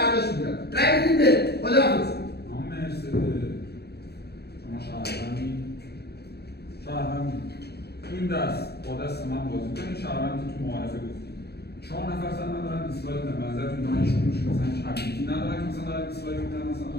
می‌کنم. رأی بدید به خداحافظ. شهروند تو این دست با دست من بازی کنید. شهروندی تو معارفه گفتیم 4 نفر سن ندارن دیسلایک بدن. نظرتون دانشجوش مثلا چابیتی ندارن که مثلا دارن دیسلایک میدن. مثلا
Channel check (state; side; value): late; right; 0.47 ms